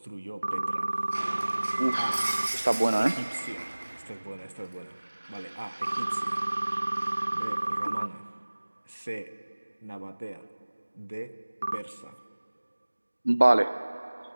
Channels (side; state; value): both; inverted; correlation -1.00